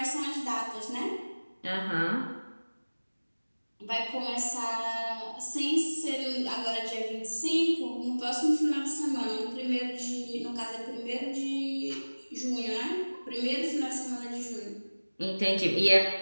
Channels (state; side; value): inverted; both; correlation -1.00